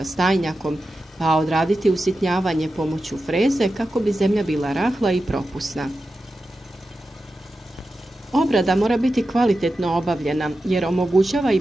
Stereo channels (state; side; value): normal; both; correlation 0.92